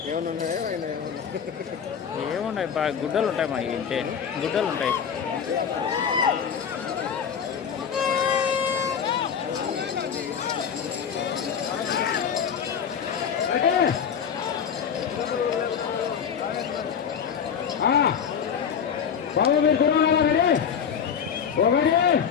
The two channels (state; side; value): quieter; right; 7.5 dB